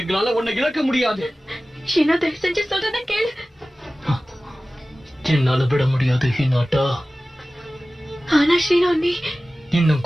உன்னை இழக்க முடியாது. ஷீனா, தயவு செஞ்சு சொல்றத கேளு. என்னால விட முடியாது ஹினாட்டா. ஆனா ஷீனா, நீ இன்னும்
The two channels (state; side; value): normal; both; correlation 0.97